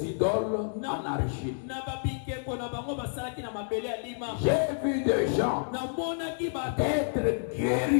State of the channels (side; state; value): right; silent; 58 dB below the other